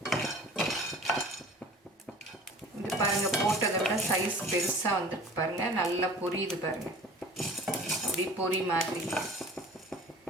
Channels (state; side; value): normal; both; correlation 0.44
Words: இது பாருங்கள், போட்டதை விட சைஸ் பெருசாக வந்துருக்கு பாருங்கள், நல்லா பொரியுது பாருங்கள். இப்படி பொரி மாதிரி